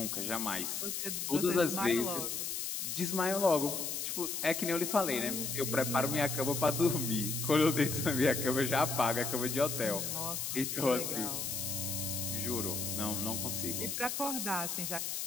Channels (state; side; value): noise; left; hiss, 3 dB below the sound